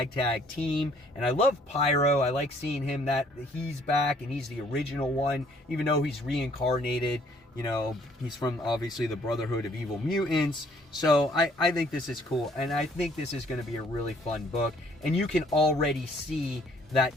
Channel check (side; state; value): both; normal; correlation 0.62